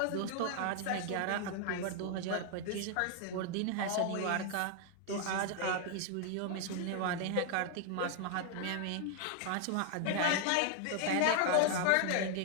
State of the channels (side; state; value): both; different; correlation 0.00